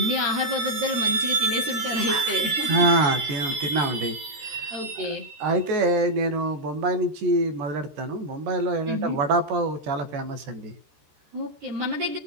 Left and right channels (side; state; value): left; late; 13 ms